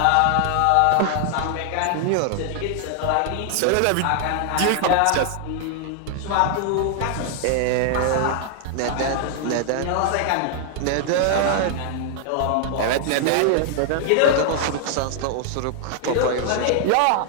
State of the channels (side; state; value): both; different; correlation 0.00